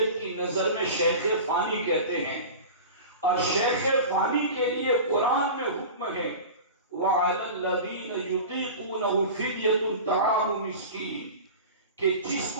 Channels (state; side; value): inverted; both; correlation -0.33